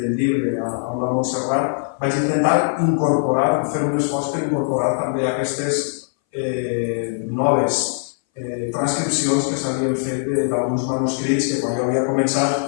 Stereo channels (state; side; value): silent; right; 61 dB below the other